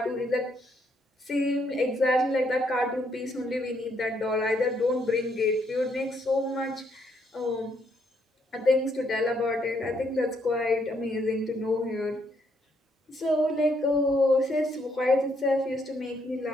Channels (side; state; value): both; normal; correlation 0.73